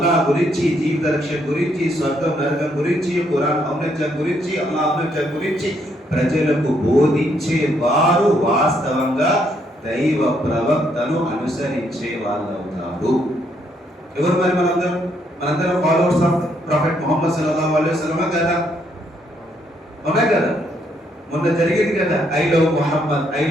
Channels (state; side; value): normal; both; correlation 0.73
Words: గురించి, జీవిత రక్షణ గురించి, స్వర్గం నరకం గురించి, ఖురాన్ ఔన్నత్యం గురించి, అల్లాహ్ ఔన్నత్యం గురించి ప్రజలకు బోధించే వారు వాస్తవంగా దైవ ప్రవక్తను అనుసరించే వాళ్ళు అవుతారు. ఎవరు మరి మనందరం ఫాలోవర్స్ ఆఫ్ ప్రొఫెట్ ముహమ్మద్ సల్లల్లాహు అలైహి వసల్లం కదా? అవునా కదా? మొన్న జరిగింది కదా ఐ లవ్